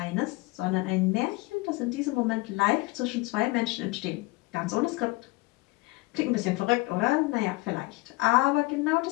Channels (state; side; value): quieter; right; 23.0 dB